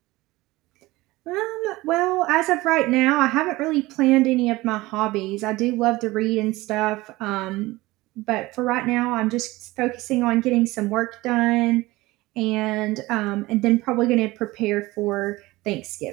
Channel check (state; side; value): quieter; left; 19.8 dB